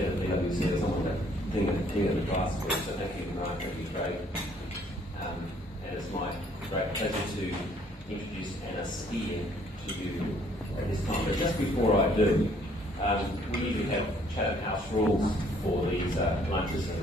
of the PwC or someone to think of the class for. So thank you, Mark. Thank you, Craig. And it's my great pleasure to introduce Anna Speer to you at this time. But just before I do, we usually have Chatham House rules for these lunches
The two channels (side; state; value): both; normal; correlation 0.62